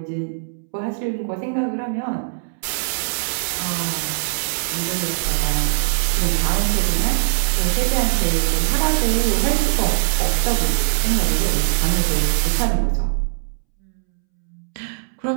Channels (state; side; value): silent; left; 65 dB below the other